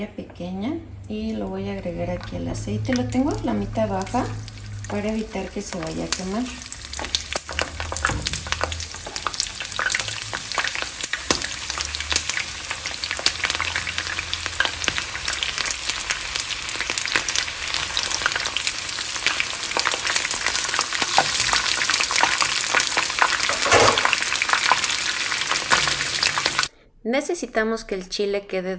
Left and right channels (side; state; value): both; identical; correlation 1.00